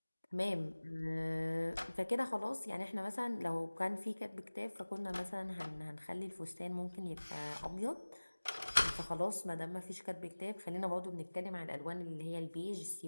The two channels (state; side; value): inverted; both; correlation -1.00